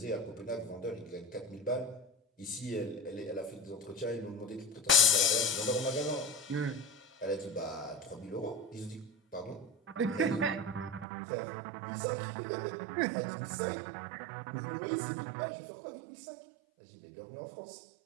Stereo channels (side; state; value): left; drops out; at 11.1 s